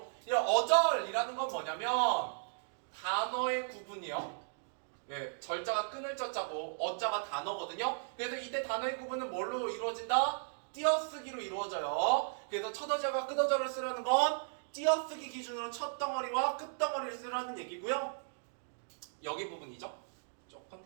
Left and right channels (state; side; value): silent; left; digital silence